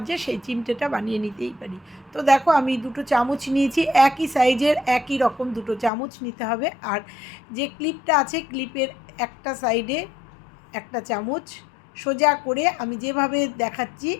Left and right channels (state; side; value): drops out; right; at 5.9 s